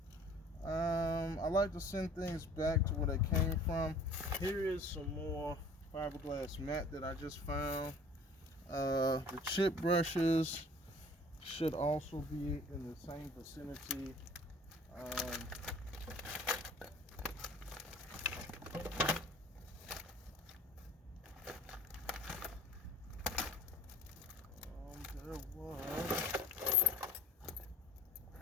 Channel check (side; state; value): both; normal; correlation 0.49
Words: I like to send things back to where they came from. Here is some more fiberglass mat that I just found. The chip brushes should also be in the same vicinity. There was